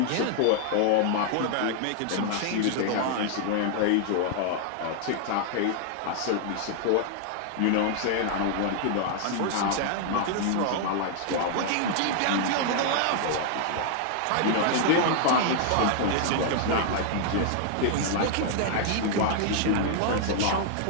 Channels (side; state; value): both; different; correlation 0.00